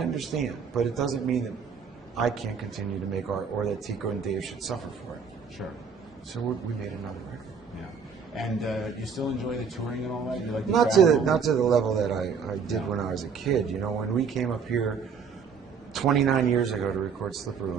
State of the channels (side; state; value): left; quieter; 6.0 dB